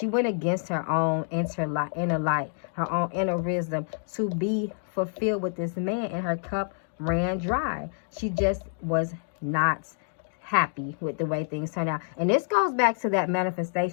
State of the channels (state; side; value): silent; right; digital silence